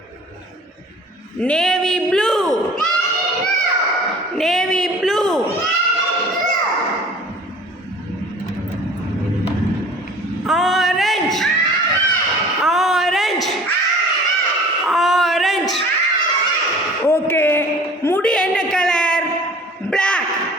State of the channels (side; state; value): both; normal; correlation 0.46